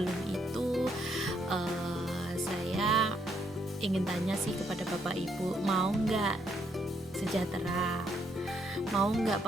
itu saya ingin tanya sih kepada Bapak Ibu, mau nggak sejahtera? Mau nggak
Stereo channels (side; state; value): both; normal; correlation 0.73